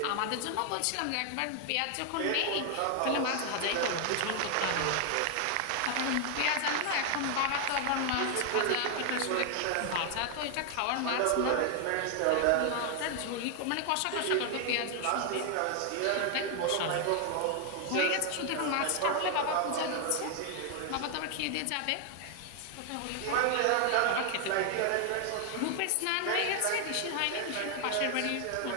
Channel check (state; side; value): different; both; correlation 0.00